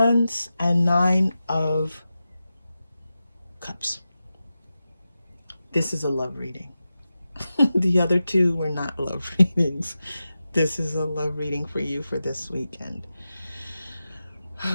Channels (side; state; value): both; inverted; correlation -0.92